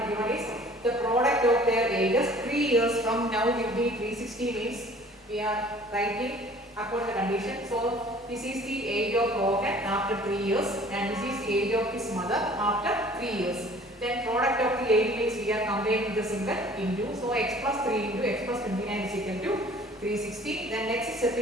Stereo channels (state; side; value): normal; both; correlation 0.51